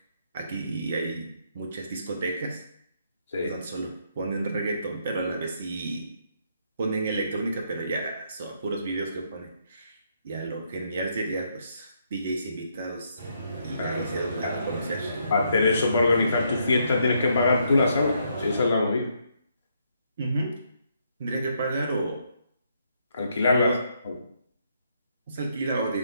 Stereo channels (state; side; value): inverted; both; correlation -0.75